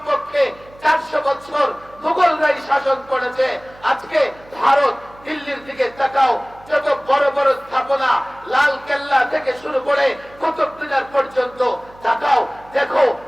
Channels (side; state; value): right; noise; hum, 24 dB below the sound